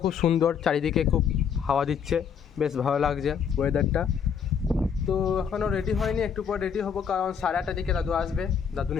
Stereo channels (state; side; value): quieter; right; 7.3 dB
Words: খুব সুন্দর, চারিদিকে খুব হাওয়া দিচ্ছে, বেশ ভালো লাগছে ওয়েদারটা। তো এখনও রেডি হয়নি, একটু পর রেডি হবো, কারণ 8:30 দিকে দাদু আসবে, দাদু